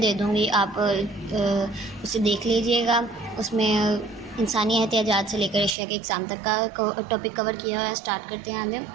دوں گی, آپ اسے دیکھ لیجئے گا. اس میں انسانی احتیاجات سے لے کر اشیاء کے اقسام تک کا ٹاپک کور کیا ہے. اسٹارٹ کرتے ہیں آگے.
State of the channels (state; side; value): drops out; left; at 5.7 s